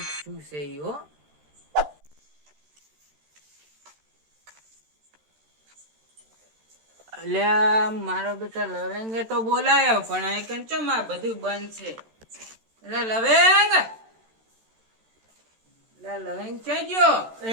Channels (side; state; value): left; late; 13 ms